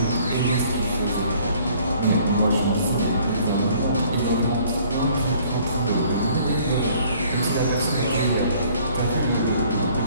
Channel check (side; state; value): both; inverted; correlation -0.58